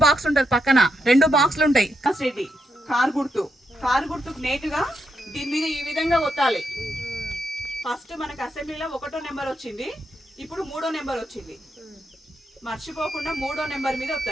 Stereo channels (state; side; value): normal; both; correlation 0.82